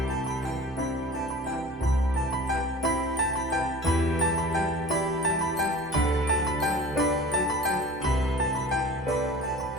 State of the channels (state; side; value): normal; both; correlation 0.41